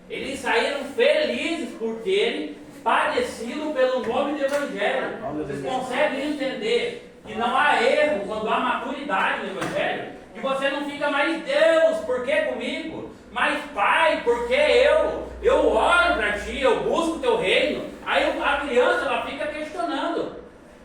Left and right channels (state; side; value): identical; both; correlation 1.00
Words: Eles saíram felizes por terem padecido pelo nome do Evangelho. Vocês conseguem entender que não há erro quando há maturidade no Evangelho? Que você não fica mais, Deus, por que comigo? Mas Pai, por que eu? Eu oro para ti, eu busco o teu reino. Aí a criança, ela fica questionando.